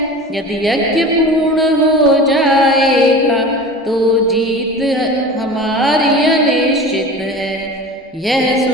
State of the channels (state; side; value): normal; both; correlation 0.36